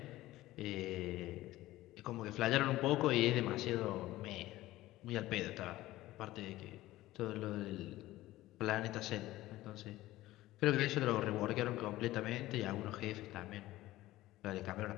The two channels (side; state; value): right; quieter; 16.6 dB